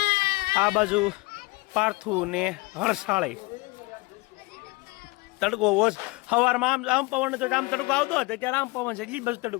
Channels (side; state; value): right; quieter; 24.5 dB